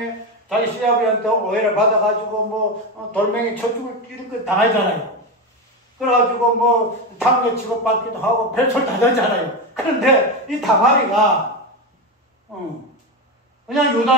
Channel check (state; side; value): normal; both; correlation 0.15